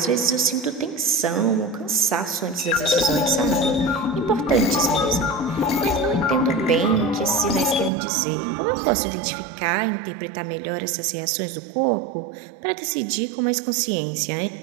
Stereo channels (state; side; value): drops out; left; at 7.9 s